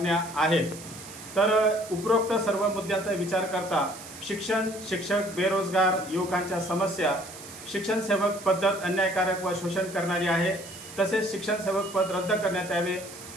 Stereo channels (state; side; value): noise; right; hiss, 15 dB below the sound